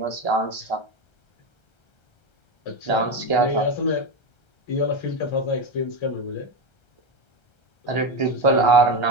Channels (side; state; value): right; late; 1.3 ms